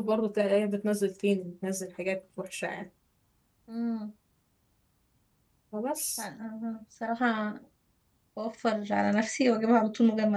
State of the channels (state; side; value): identical; both; correlation 1.00